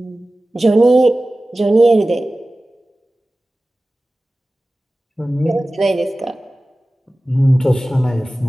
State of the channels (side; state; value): both; normal; correlation 0.96